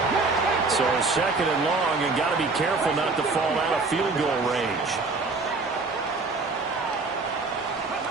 So 2nd and long, and got to be careful not to fall out of field goal range.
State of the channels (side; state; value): left; quieter; 3.8 dB